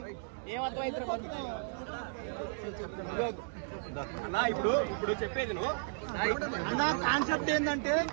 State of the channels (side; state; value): left; silent; digital silence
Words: ఏమర్థమైతే అన్నా. ఇప్పుడు చెప్పేది నువ్వు కాన్సెప్ట్ ఏంటంటే